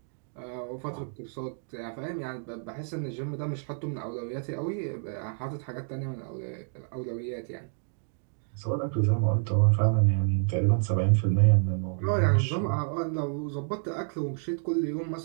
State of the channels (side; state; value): left; silent; digital silence